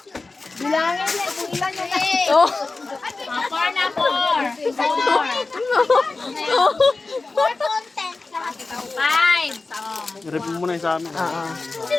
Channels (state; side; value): quieter; right; 3.7 dB